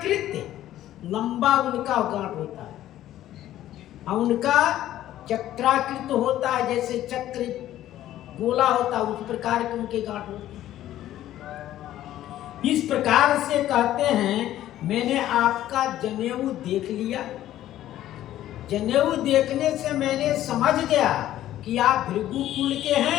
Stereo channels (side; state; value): right; quieter; 13.1 dB